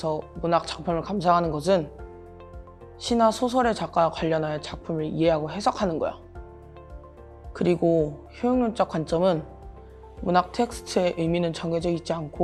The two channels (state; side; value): identical; both; correlation 1.00